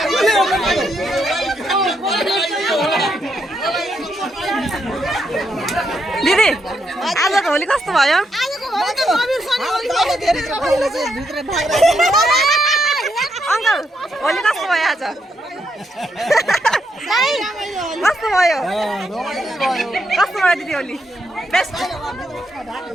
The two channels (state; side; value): normal; both; correlation 0.79